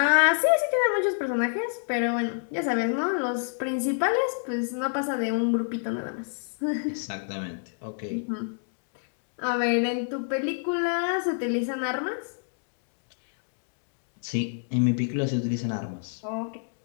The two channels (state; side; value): silent; right; digital silence